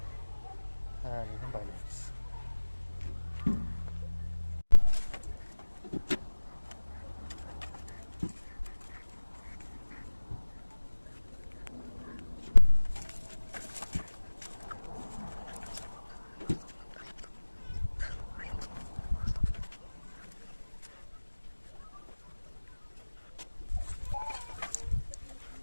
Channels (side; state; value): both; inverted; correlation -1.00